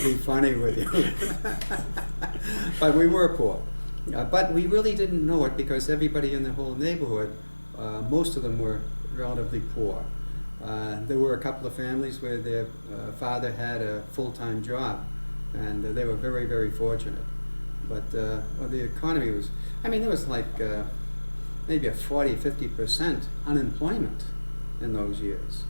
be funny with you. But we were poor. But we really didn't know it because everybody in the whole neighborhood, most of them were relatively poor. There were a couple of families where their father had a full-time job, and they were very, very fortunate. But well, the economy was, I mean, there was like maybe a 40-50% unemployment in those years.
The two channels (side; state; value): both; inverted; correlation -1.00